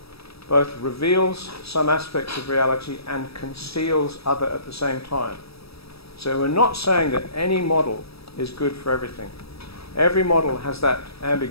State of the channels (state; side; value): late; right; 0.77 ms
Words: both reveals some aspects of reality and conceals other at the same time. So we're not saying that any model is good for everything. Every model has that